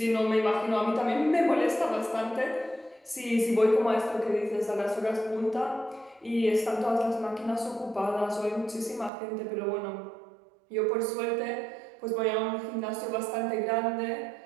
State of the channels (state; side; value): drops out; left; at 9.1 s